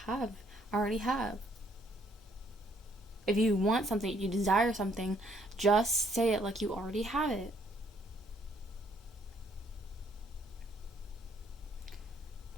have. I already have. If you want something, if you desire something, just say it like you already have it.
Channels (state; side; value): normal; both; correlation 0.67